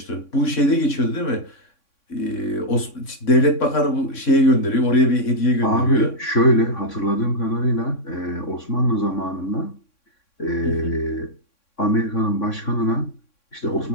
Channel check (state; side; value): late; right; 3.6 ms